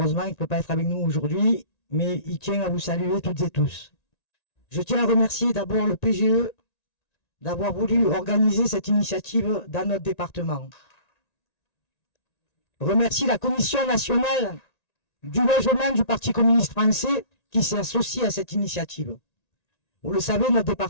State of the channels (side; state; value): right; late; 1.9 ms